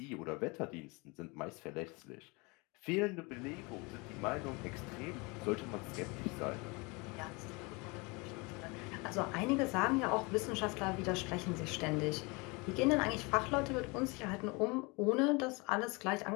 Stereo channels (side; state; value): right; quieter; 27.5 dB